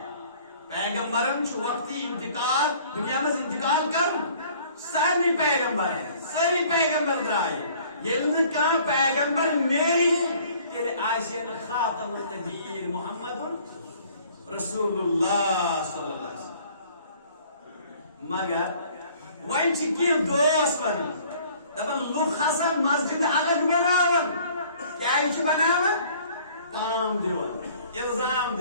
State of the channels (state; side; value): inverted; both; correlation -0.55